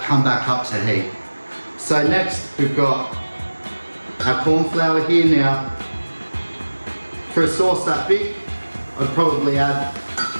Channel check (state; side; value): inverted; both; correlation -1.00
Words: come back up to heat. So next we've got our corn flour here. Now, for a sauce that big, I'd probably add